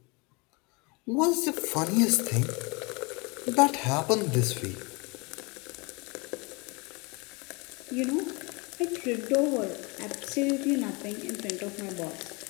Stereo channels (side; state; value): right; quieter; 28.4 dB